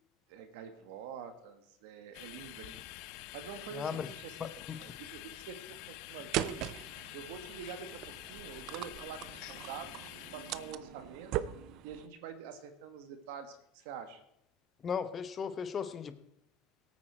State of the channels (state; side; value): normal; both; correlation 0.32